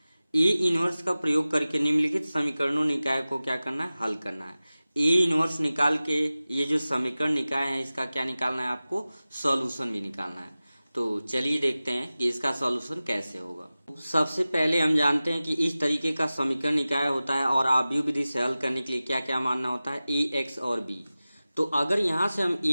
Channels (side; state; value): both; inverted; correlation -0.96